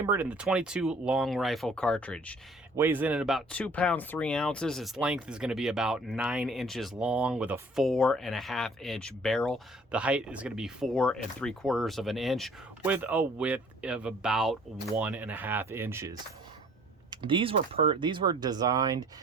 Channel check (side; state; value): both; normal; correlation 0.55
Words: in the 22 long rifle cartridge. Weighs in at about 2 pounds 3 ounces. Its length is going to be about 9 inches long with a 4.5 inch barrel. The height is going to be 4 3/4 of an inch with a width of about 1.5 inches. These were designed